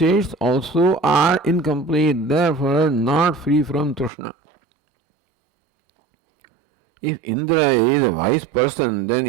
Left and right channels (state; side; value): drops out; left; at 4.1 s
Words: also are incomplete, therefore not free from Trishna. If Indra is a wise person, then